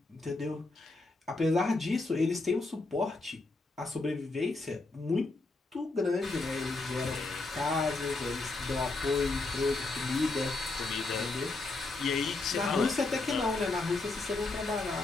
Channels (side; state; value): right; quieter; 3.3 dB